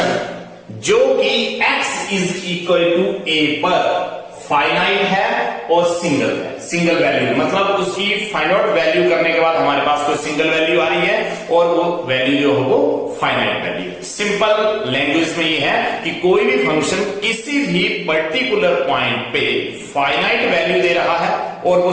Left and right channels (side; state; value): both; identical; correlation 1.00